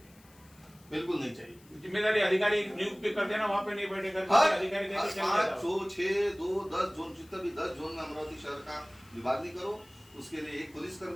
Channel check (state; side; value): noise; left; hiss, 27 dB below the sound